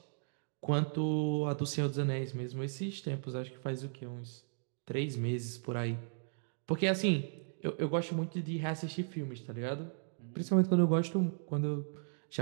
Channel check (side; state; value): left; silent; digital silence